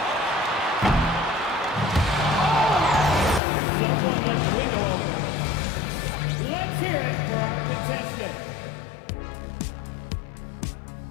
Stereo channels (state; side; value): drops out; right; at 3.4 s